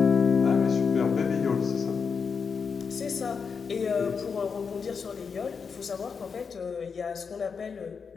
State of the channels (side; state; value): right; quieter; 5.8 dB